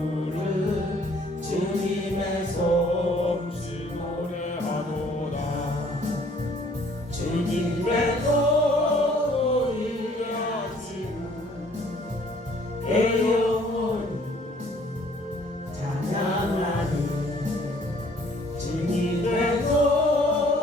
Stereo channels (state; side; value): normal; both; correlation 0.59